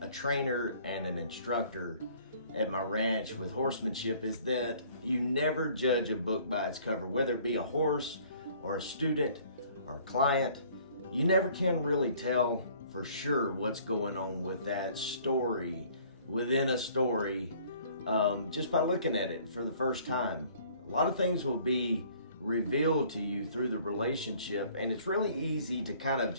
trainer and an instructor at my ranch with horsemanship is that you never judge a book by its cover, whether it be a horse or a student or a client. You never can really tell for sure what's going on with that story within a story just by looking at it for the first time. A lot of things will be revealed to you through the relationship, and it's really easy to kind of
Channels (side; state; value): both; inverted; correlation -0.56